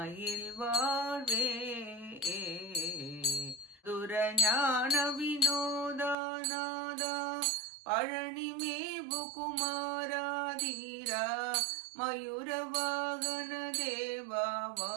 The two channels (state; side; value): drops out; left; at 6.2 s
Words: வாழ்வே துரஞான வினோதாநாதா பழனி மேவு குமாராதீரா மயூர வாகன